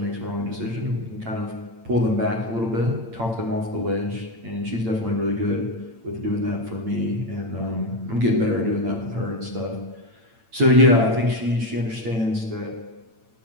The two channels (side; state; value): left; late; 8.9 ms